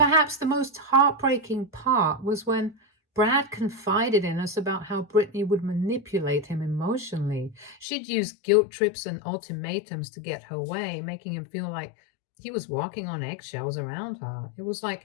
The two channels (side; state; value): right; drops out; at 7.9 s